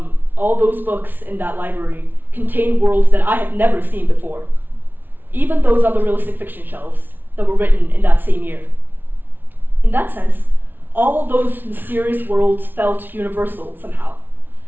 those books in that library contained worlds that I had never seen before, even those on the realistic fiction shelves that were written in that same year. In that sense, all of those mysterious worlds felt universal somehow,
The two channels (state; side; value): late; left; 0.092 ms